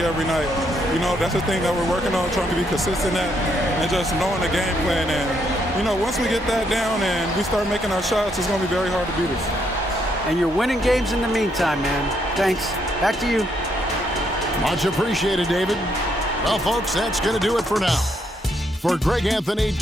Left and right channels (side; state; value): both; normal; correlation 0.74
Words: night. You know, that's the thing that we're working on, trying to be consistent at, and just knowing the game plan. And, you know, once we get that down and we start making our shots, it's going to be very hard to beat us. And you're winning games in the meantime, man. Thanks. Back to you. Much appreciated, David. Well, folks, that's going to do it for now. For Greg Anthony,